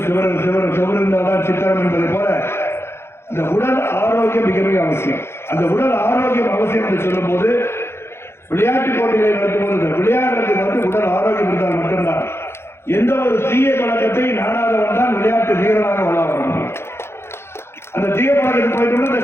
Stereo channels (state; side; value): late; right; 0.12 ms